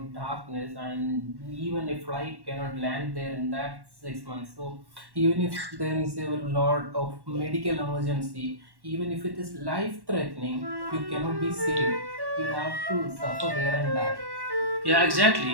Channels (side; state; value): left; late; 1.1 ms